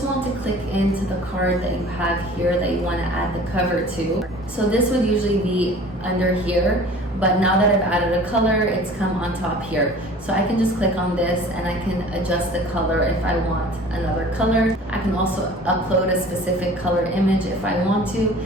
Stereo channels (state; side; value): normal; both; correlation 0.45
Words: want to click into the card that you have here that you want to add the cover to. So this would usually be under here, but now that I've added a color, it's come on top here. So I can just click on this and I can adjust the color if I want another color. I can also upload a specific color image if I want to,